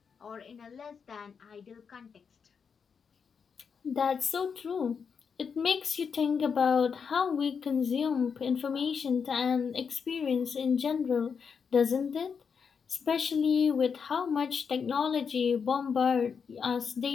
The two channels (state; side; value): quieter; right; 6.3 dB